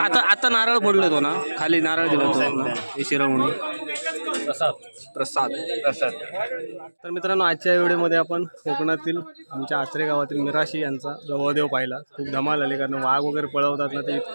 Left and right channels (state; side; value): inverted; both; correlation -1.00